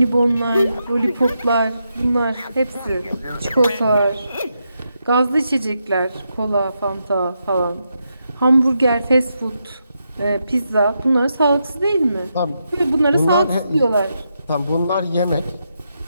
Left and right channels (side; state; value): both; inverted; correlation -0.84